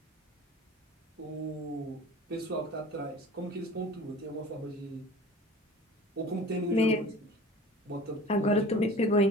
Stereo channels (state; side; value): normal; both; correlation 0.41